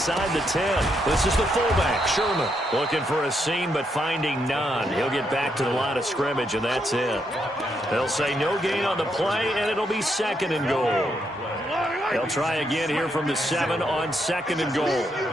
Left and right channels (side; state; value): both; normal; correlation 0.78